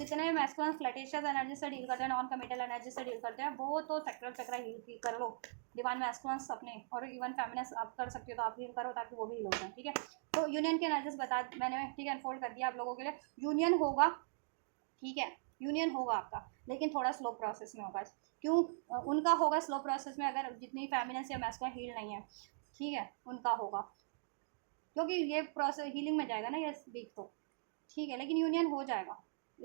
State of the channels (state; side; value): silent; left; digital silence